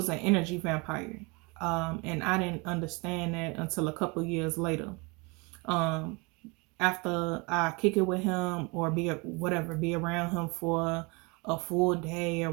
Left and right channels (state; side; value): quieter; left; 28.4 dB